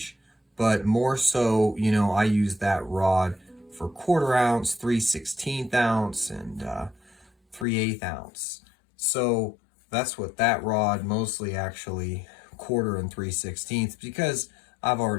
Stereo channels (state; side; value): drops out; right; at 7.7 s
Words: but more so, I use that rod for 1/4 ounce, 3/16 ounce, and 3/8 ounce. So that's what that rod mostly, actually 1/4 and 3/16, because I've